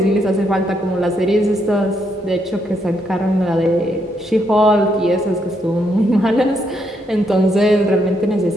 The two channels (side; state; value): both; normal; correlation 0.76